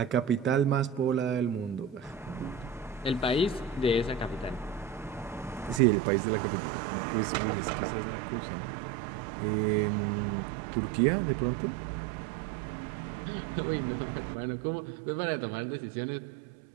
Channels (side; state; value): left; drops out; at 5.8 s